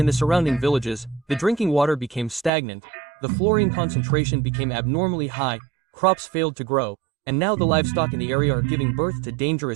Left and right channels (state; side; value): drops out; left; at 2.5 s